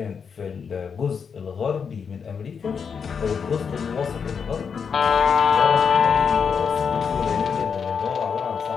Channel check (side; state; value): right; quieter; 6.4 dB